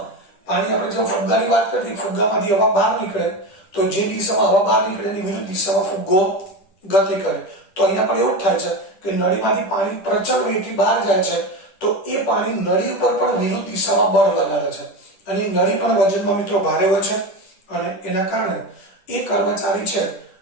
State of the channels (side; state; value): right; late; 10 ms